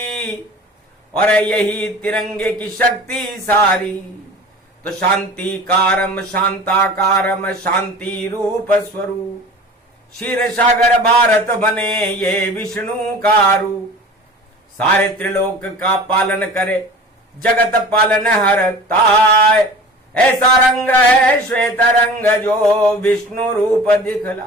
और यही तिरंगे की शक्ति सारी। तो शांति कारम शांताकारम शांति रूप स्वरूप, क्षीर सागर भारत बने ये विष्णु का रूप। सारे त्रिलोक का पालन करे, जगत पालन हरताय। ऐसा रंग है श्वेत रंग जो विष्णु रूप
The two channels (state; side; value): normal; both; correlation 0.40